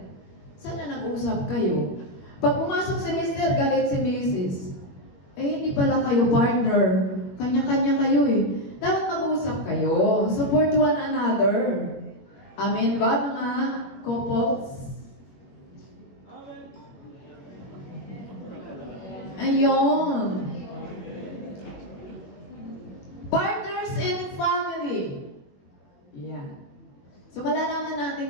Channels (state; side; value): late; right; 21 ms